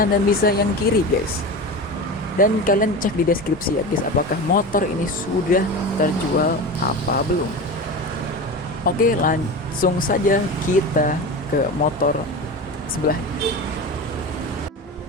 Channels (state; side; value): normal; both; correlation 0.27